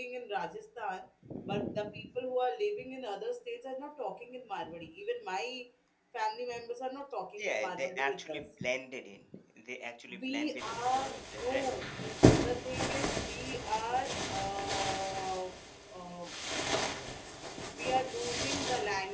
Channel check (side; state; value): both; identical; correlation 1.00